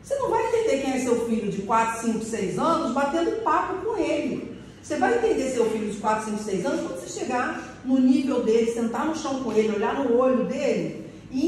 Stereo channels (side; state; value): both; identical; correlation 1.00